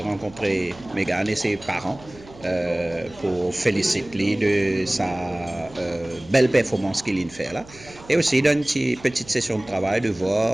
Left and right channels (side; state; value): right; noise; hum, 21 dB below the sound